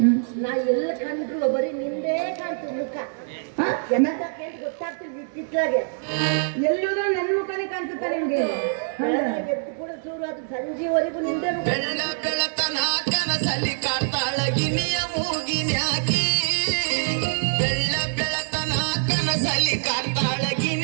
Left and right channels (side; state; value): left; silent; digital silence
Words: ನಾ ಎಲ್ಲ ಕಂಡ್ರು ಬರೀ ನಿಂದೇ ಕಾಣ್ತು ಮುಖ. ಗೊತ್ತಾಗ್ತಿಲ್ಲ ಚಿತ್ರಾಗೆ ಎಲ್ಲೂದ್ರೂ ನನ್ನ ಮುಖನೇ ಕಾಣಿಸುತ್ತಾ ನಿಮ್ಗೆ? ಎದ್ದು ಕೂಡ ಶುರು ಆಯ್ತು, ಸಂಜೆವರೆಗೂ ನಿಂದೇ ಮುಖ. ಬೆಳತನ ಕನಸಲ್ಲಿ ಕಾಡ್ತಾಳಗಿನಿಯ ಮೂಗಿನ್ಯಾಕಿ, ಬೆಳತನ ಕನಸಲ್ಲಿ